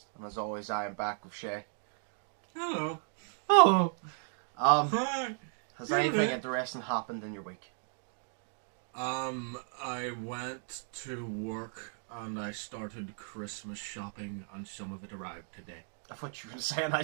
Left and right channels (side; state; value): left; silent; 55 dB below the other